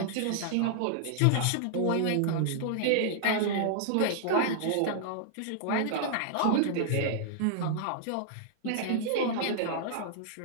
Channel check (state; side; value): different; both; correlation -0.01